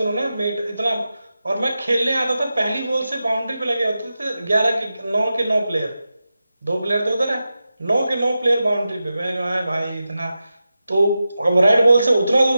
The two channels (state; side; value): inverted; both; correlation -0.91